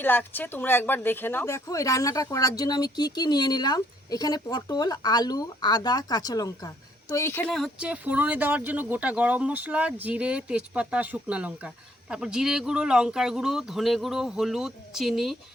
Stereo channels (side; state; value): both; normal; correlation 0.66